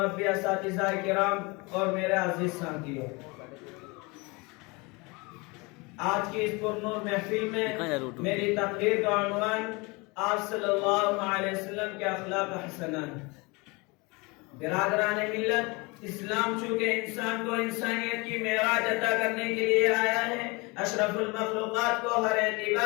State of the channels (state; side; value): quieter; right; 26.8 dB